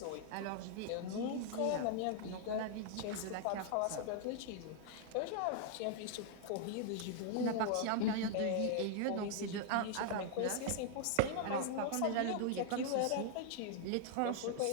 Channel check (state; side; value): different; both; correlation 0.00